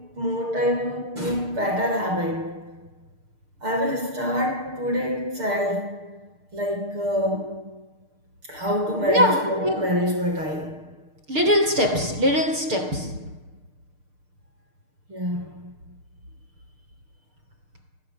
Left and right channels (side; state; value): left; late; 6.6 ms